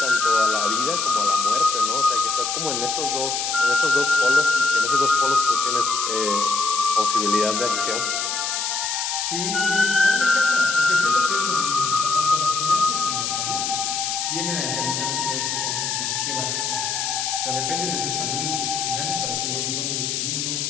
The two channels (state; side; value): noise; left; hiss, 1 dB below the sound